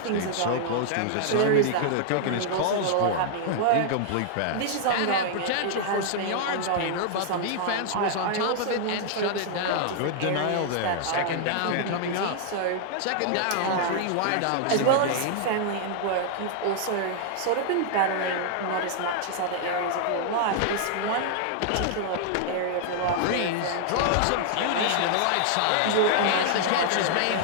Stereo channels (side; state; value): both; different; correlation -0.01